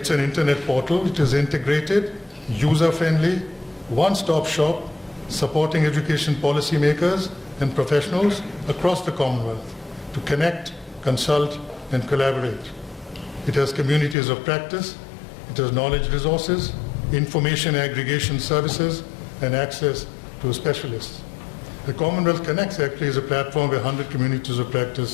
an internet portal. It is integrated, user-friendly, one-stop shop, supporting education policymakers and professionals across the Commonwealth to connect, consult, and collaborate. It has communities of practice. It has knowledge resources, information aggregation services, and access to specialists. The Commonwealth Connects actually is a platform where 100 communities of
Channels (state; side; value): drops out; right; at 14.2 s